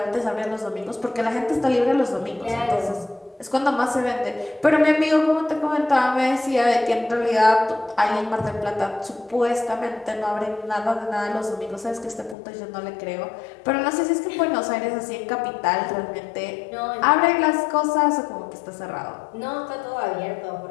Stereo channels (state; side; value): drops out; right; at 12.4 s